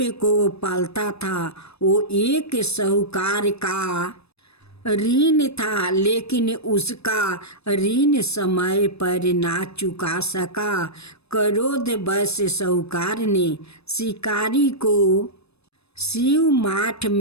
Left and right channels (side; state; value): right; late; 0.79 ms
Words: को पालता था। वो एक साहूकार का ऋण था, लेकिन उसका ऋण समय पर ना चुका सका। क्रोधवश साहूकार ने शिकारी को शिव मठ